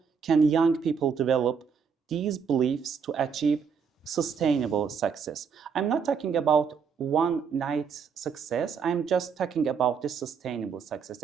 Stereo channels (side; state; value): left; quieter; 6.3 dB